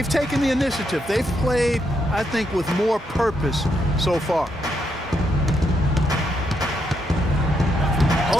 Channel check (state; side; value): normal; both; correlation 0.78